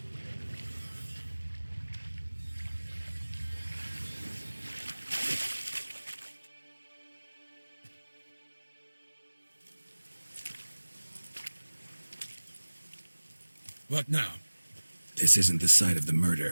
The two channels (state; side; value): inverted; both; correlation -1.00